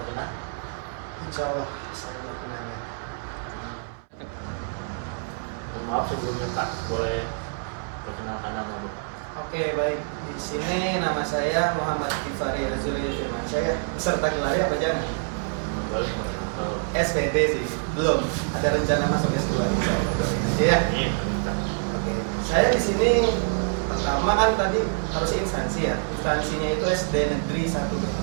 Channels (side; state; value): left; silent; 61 dB below the other